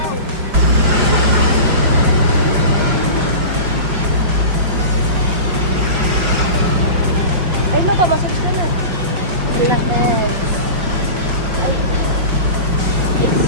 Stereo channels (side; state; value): left; late; 5.2 ms